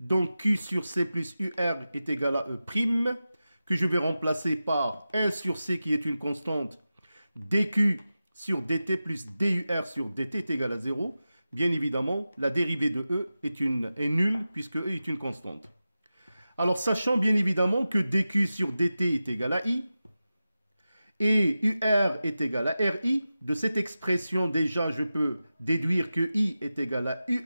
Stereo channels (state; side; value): inverted; both; correlation -0.93